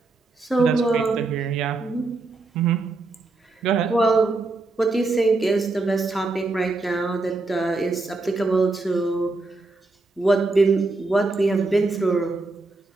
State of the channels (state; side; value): quieter; left; 3.4 dB